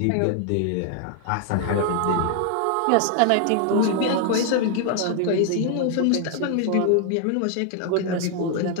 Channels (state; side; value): different; both; correlation 0.00